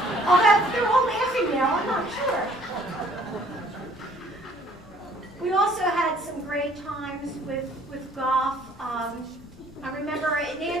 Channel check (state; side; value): noise; left; rumble, 23 dB below the sound